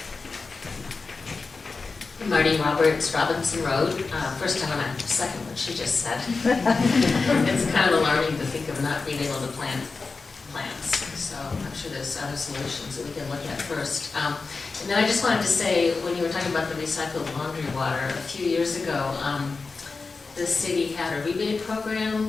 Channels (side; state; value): right; quieter; 4.2 dB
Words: Marty Roberts, Robinson Road. First, I want to second what she just said. It's kind of alarming to think of not being able to plant plants. So I'm sure there's other solutions that we can look at first. And then I just wanted to say, when you were talking about the recycled laundry water, a few years ago, the city had a rebate program